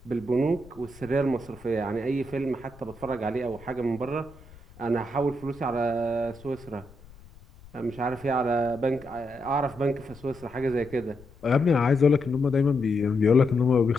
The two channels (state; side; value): noise; left; rumble, 22 dB below the sound